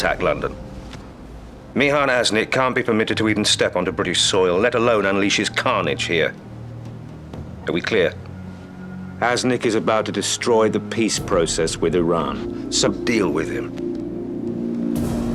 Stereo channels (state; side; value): identical; both; correlation 1.00